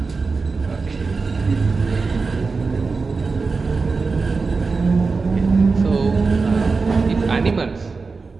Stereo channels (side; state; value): left; quieter; 4.3 dB